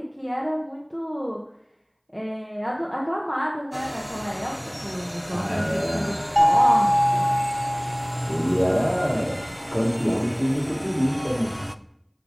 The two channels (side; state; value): both; identical; correlation 1.00